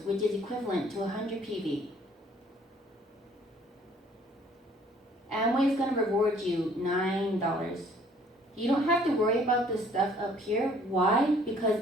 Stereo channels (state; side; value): normal; both; correlation 0.58